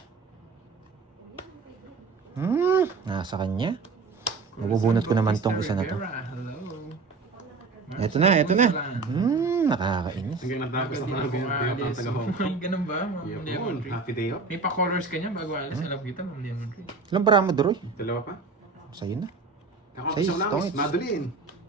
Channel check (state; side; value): quieter; left; 4.2 dB